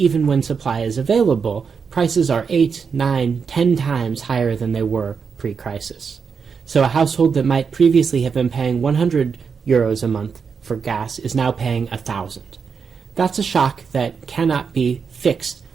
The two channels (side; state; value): left; quieter; 5.9 dB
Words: when supply is available, prices are 8, 9, 10 times higher than they were pre-crisis. So a household that might previously have been paying 100 euros a month for gas is now paying 1,000. That's a shock that cannot be fixed